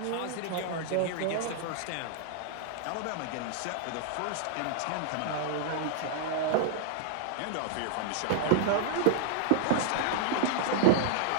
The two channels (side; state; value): both; different; correlation -0.01